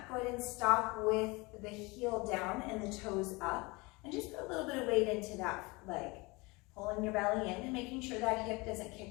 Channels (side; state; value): right; quieter; 25.3 dB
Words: go ahead and stop with the heel down and the toes up, and just put a little bit of weight into that leg. Pulling your belly in and making sure that hip doesn't